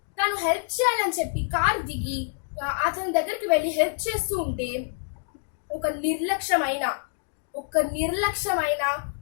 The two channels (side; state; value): right; silent; digital silence